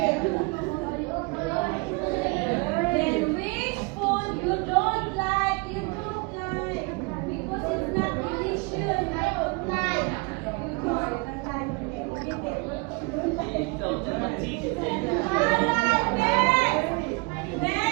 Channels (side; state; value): left; quieter; 28.7 dB